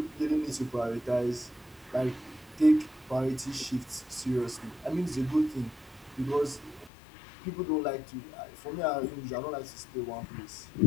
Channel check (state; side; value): drops out; right; at 6.9 s